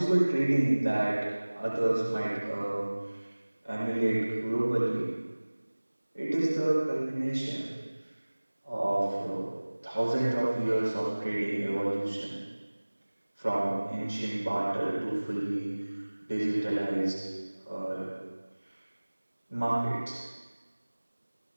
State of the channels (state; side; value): inverted; both; correlation -1.00